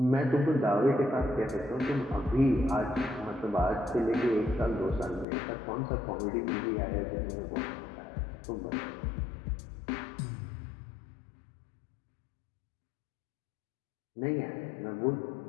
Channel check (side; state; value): right; drops out; at 5.2 s